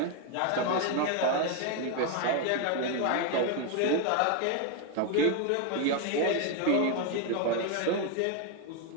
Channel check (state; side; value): different; both; correlation 0.01